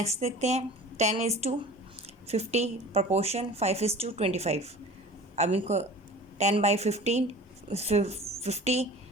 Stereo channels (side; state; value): both; normal; correlation 0.41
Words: देखते हैं। 10:50 प्रोपोर्शन 5:25। अब इनको 10/15 50